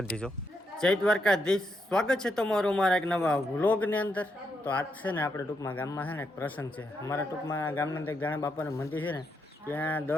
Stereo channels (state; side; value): normal; both; correlation 0.81